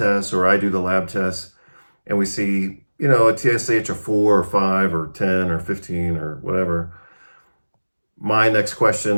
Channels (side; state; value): both; inverted; correlation -1.00